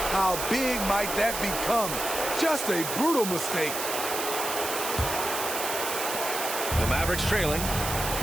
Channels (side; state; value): right; noise; hiss, 4 dB below the sound